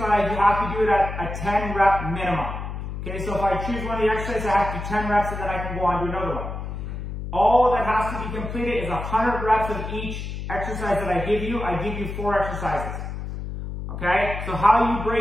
you have to do it at a 10 rep minimum. Okay, so if I choose one of the exercises, I have to do 10 reps and then I can go on to another one. All that has to be completed is 100 reps of each exercise that I give you. I give you 4 exercises. Okay, so how you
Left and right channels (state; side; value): noise; left; hum, 6 dB below the sound